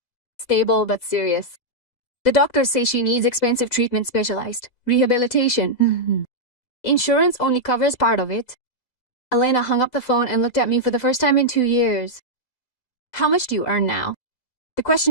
Stable but serious. The doctors say she needs expensive treatment, specialized rehabilitation. Insurance only covers part of it. Elena hung up the phone and looked at me for the first time in 2 years. How much do you earn now? The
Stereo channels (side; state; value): right; late; 4.0 ms